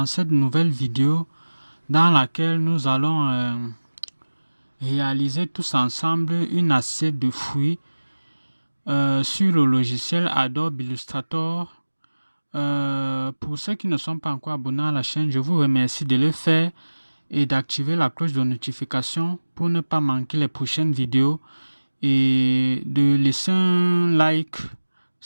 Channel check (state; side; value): inverted; both; correlation -1.00